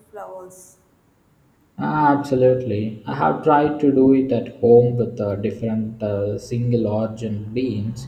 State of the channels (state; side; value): identical; both; correlation 1.00